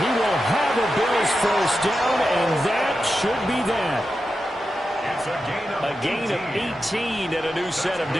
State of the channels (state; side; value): normal; both; correlation 0.90